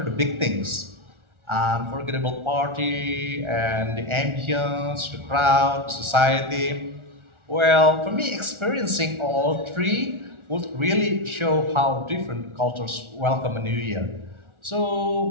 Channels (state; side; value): late; left; 1.4 ms